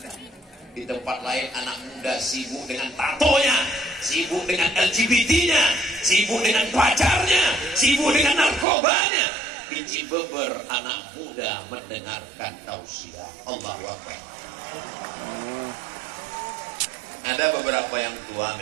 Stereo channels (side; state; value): left; drops out; at 8.7 s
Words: Di tempat lain anak muda sibuk dengan tatonya, sibuk dengan LGBT-nya, sibuk dengan pacarnya, sibuk dengan narkobanya. Di Cibeber anak muda mendengarkan tausiah. Allahu Akbar. Ada beberapa yang tua